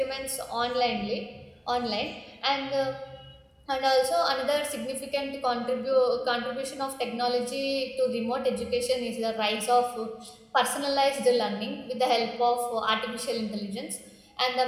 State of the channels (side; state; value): both; identical; correlation 1.00